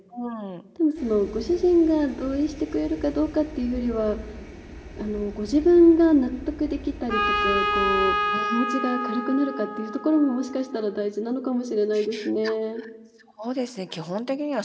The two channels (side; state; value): both; identical; correlation 1.00